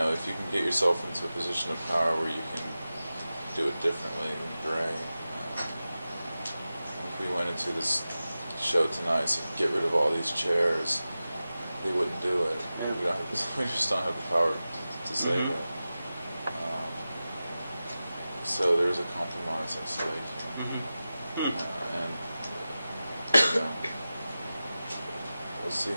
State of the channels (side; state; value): both; inverted; correlation -0.95